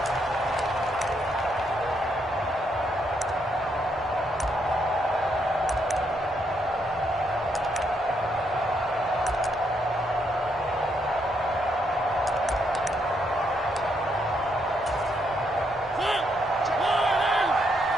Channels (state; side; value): normal; both; correlation 0.76